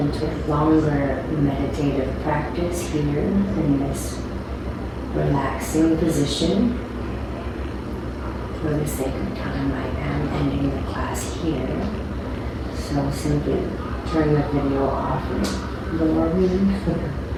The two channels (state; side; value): identical; both; correlation 1.00